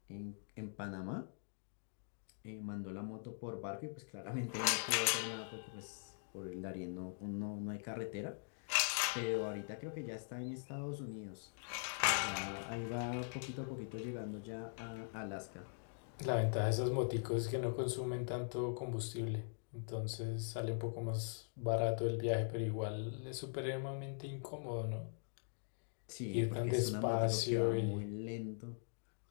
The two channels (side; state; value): right; silent; digital silence